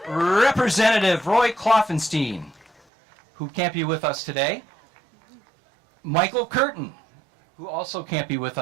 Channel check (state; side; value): drops out; left; at 2.8 s